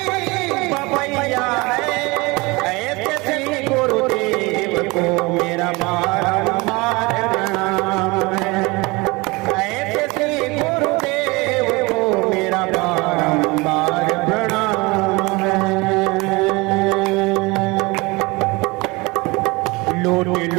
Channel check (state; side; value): quieter; left; 24.6 dB